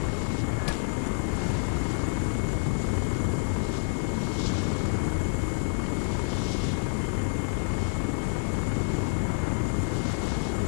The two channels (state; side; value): silent; right; 59 dB below the other